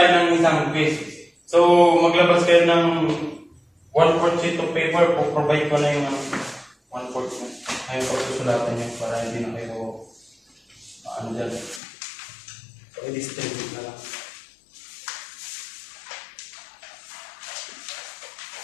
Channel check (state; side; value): drops out; right; at 11.8 s